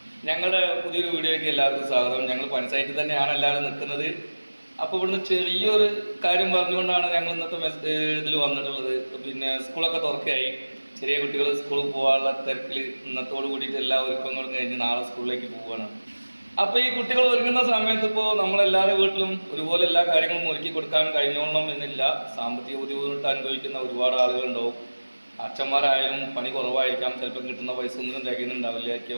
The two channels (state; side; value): inverted; both; correlation -1.00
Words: ഞങ്ങളുടെ പുതിയൊരു വീഡിയോയ്ക്ക് എല്ലാവർക്കും സ്വാഗതം. ഞങ്ങൾ പഞ്ചായത്തിൽ തന്നെയാണ് എല്ലാവരും നിൽക്കുന്നത്. അപ്പോൾ ഇവിടുന്ന് ചെറിയൊരു കാര്യം പറഞ്ഞുകൊണ്ടാണ് ഞങ്ങൾ ഇന്നത്തെ ഇതിൽ വന്നിട്ടുള്ളത്. പിന്നെ സ്കൂളൊക്കെ തുറക്കുകയായി. ചെറിയ കുട്ടികൾ സ്കൂളിൽ പോകാനുള്ള തിരക്കിൽ ഇന്നത്തോട് കൂടിയിട്ട് എല്ലാ ഒരുക്കങ്ങളും കഴിഞ്ഞ് നാളെ സ്കൂളിലേക്ക് പോവുകയാണ്. അപ്പോൾ ഈ കുട്ടികൾ ഒരുങ്ങുന്ന സമയത്ത് ഇപ്പോൾ നമ്മളെല്ലാവരുടെ വീട്ടിലും ഒരുപോലെ എല്ലാ കാര്യങ്ങളും ഒരുക്കി കൊടുക്കാൻ കഴിഞ്ഞോളണം എന്നില്ല. സാമ്പത്തിക ബുദ്ധിമുട്ട് അനുഭവിക്കുന്ന ഒരുപാട് ആളുകളുണ്ടാവും. അച്ഛന്മാരായാലും പണി കുറവായിരിക്കാം, ചിലപ്പോൾ കിട്ടുന്ന പൈസ ഒന്നും